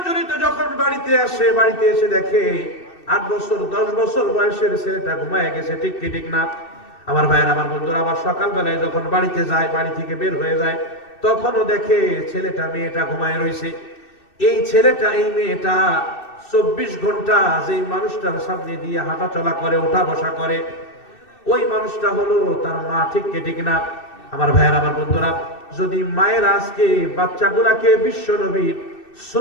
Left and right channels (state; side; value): late; right; 2.6 ms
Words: যখন বাড়িতে এসে দেখে 8 বছর 10 বছর বয়সের ছেলেটা ঘুমায় গেছে, ঠিক কি ঠিক না? আমার ভাইয়ের, আমার বন্ধুরা, আবার সকাল বেলায় যখন বাড়িতে যায়, বাড়ি থেকে বের হয়ে যায়, তখনও দেখে ছেলেটা মেয়েটা ঘুমায় রয়েছে। এই ছেলেটা এই মেয়েটা 24 ঘন্টা যেই মানুষটার সামনে দিয়ে হাঁটা চলা করে, ওঠা বসা করে, ওই মানুষটা হলো তার মা, ঠিক কি ঠিক না? আমার ভাইয়ের, আমার বন্ধুরা, যদি মায়ের আজকে বাচ্চাগুলাকে বিশ্বনবীর